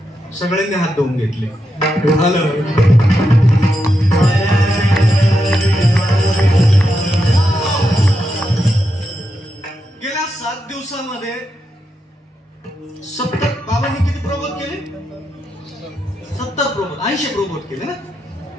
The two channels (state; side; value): normal; both; correlation 0.85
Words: सगळ्यांनी हात धुवून घेतले. गेल्या 7 दिवसात दिवसामध्ये 70 बाबांनी किती प्रबोध केले? 70 प्रबोध, 80 प्रबोध केले ना.